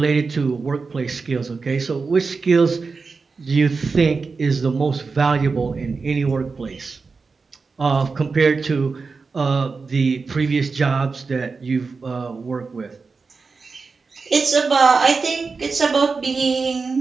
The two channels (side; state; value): left; quieter; 4.5 dB